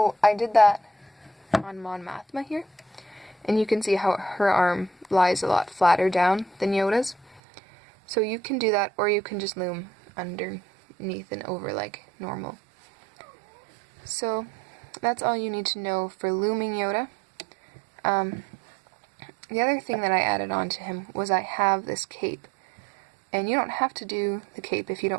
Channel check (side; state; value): left; drops out; at 7.4 s